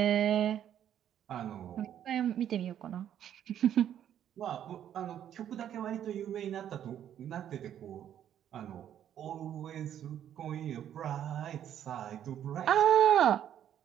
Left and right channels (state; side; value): quieter; left; 10.2 dB